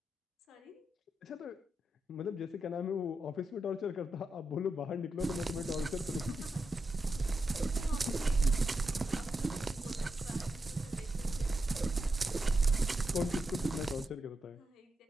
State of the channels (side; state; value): both; normal; correlation 0.87